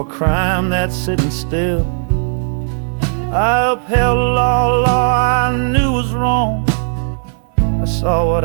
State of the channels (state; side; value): silent; left; 57 dB below the other